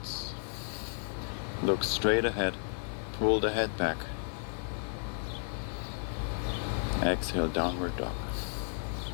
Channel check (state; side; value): silent; right; 56 dB below the other